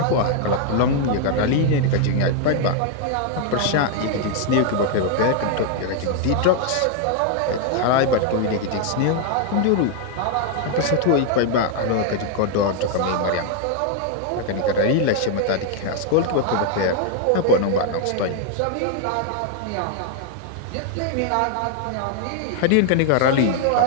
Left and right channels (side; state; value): both; different; correlation 0.00